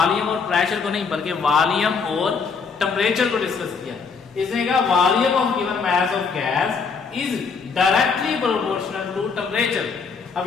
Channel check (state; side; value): quieter; right; 5.3 dB